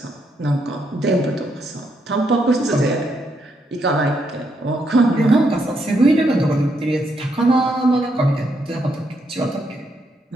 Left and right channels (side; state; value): both; normal; correlation 0.77